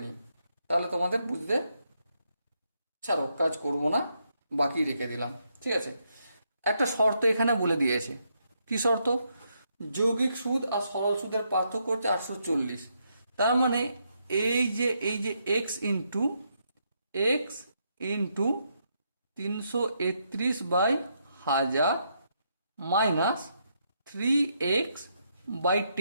নিই, তাহলে তোমাদের বুঝতে, ছাড়ো কাজ করব না, বাকি রেখে দিলাম। ঠিক আছে। একটা শর্ত এখানে বলে দিয়েছে। কি শর্ত? যৌগিক সুদ আর সরল সুদের পার্থক্য হচ্ছে 840। তার মানে এই যে এক্স ইন্টু 331/1000 মাইনাস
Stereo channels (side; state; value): both; inverted; correlation -0.78